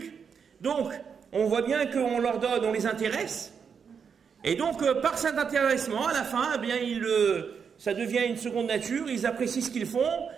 Donc, on voit bien qu'on leur donne, on les intéresse. Et donc, par cet intéressement, à la fin, eh bien, ça devient une seconde nature, ils apprécient ce qu'ils font,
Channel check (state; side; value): quieter; left; 6.6 dB